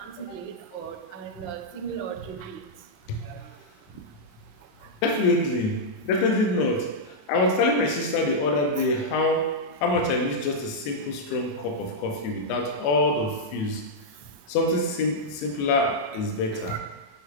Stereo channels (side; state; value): right; late; 28 ms